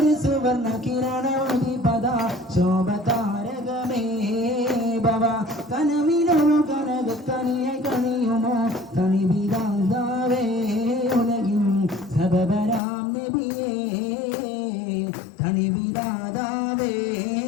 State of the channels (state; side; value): drops out; right; at 12.8 s